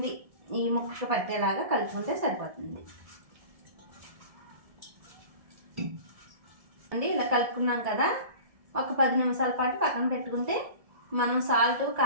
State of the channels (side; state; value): left; late; 1.7 ms